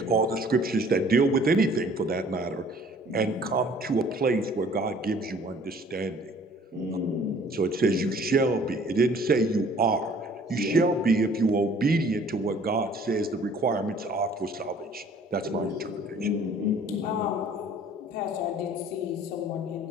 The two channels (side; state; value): both; normal; correlation 0.54